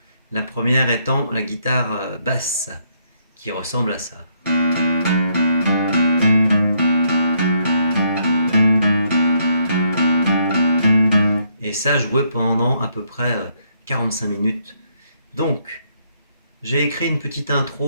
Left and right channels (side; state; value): both; inverted; correlation -0.72